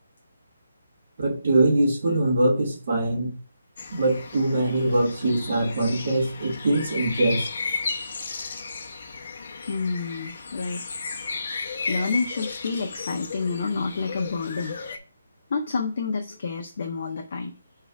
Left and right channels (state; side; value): inverted; both; correlation -0.81